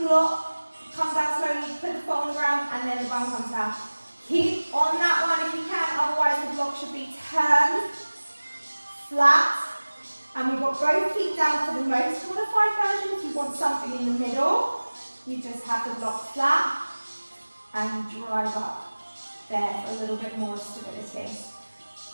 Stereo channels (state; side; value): inverted; both; correlation -1.00